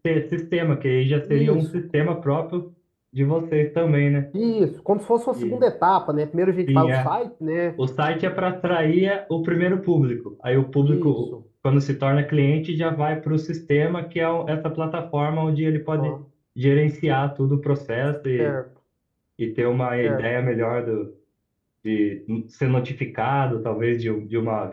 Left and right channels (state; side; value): identical; both; correlation 1.00